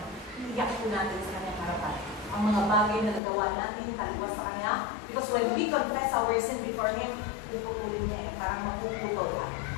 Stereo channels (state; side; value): drops out; right; at 3.2 s